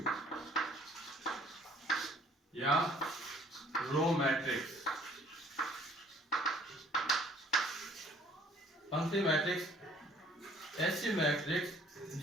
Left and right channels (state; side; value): normal; both; correlation 0.57